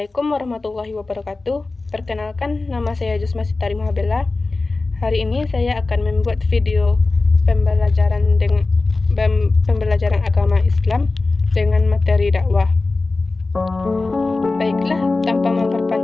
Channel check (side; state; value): right; quieter; 3.5 dB